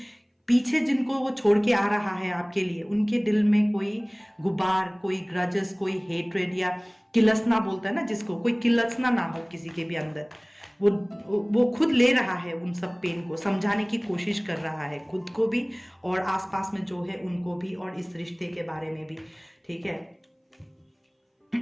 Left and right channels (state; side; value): identical; both; correlation 1.00